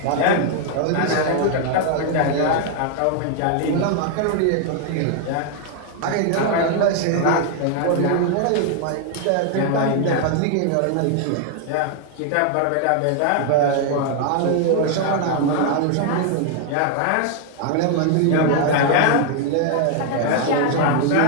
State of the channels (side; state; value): both; different; correlation 0.00